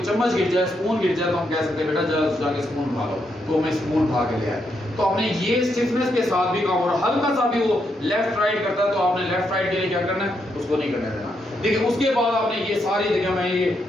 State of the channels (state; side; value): normal; both; correlation 0.80